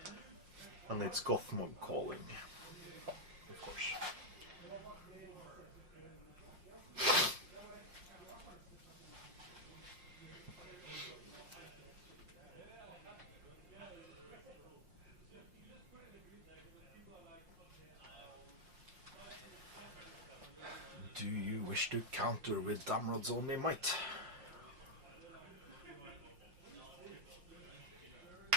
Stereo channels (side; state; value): left; late; 5.6 ms